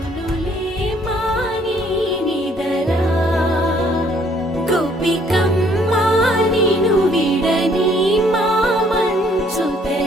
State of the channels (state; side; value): normal; both; correlation 0.63